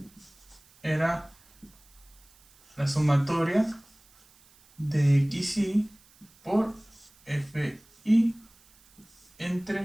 era la sumatoria de xy por fi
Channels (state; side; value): noise; right; hiss, 29 dB below the sound